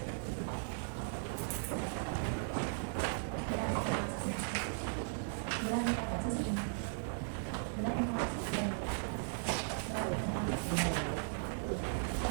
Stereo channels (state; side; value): silent; left; digital silence